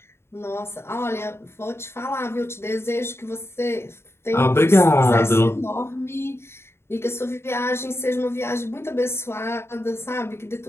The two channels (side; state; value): right; late; 0.12 ms